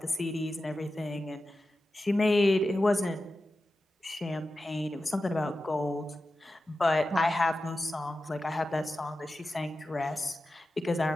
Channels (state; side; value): normal; both; correlation 0.93